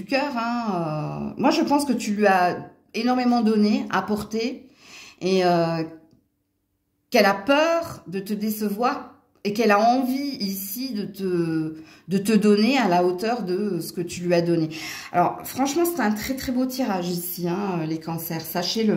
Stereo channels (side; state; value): both; identical; correlation 1.00